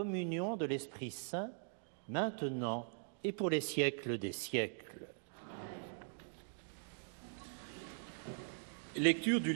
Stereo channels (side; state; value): left; silent; digital silence